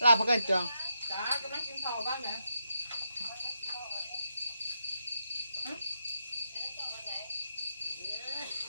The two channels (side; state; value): both; inverted; correlation -0.81